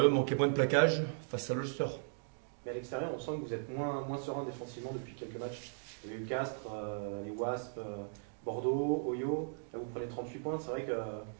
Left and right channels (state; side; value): silent; left; digital silence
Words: manquer moins de plaquage face à l'Ulster. Mais à l'extérieur, on sent que vous êtes moins serein défensivement depuis quelques matchs. Il y a eu Castres, les Wasps, Bordeaux, Oyo. Là, vous prenez 38 points. C'est vrai que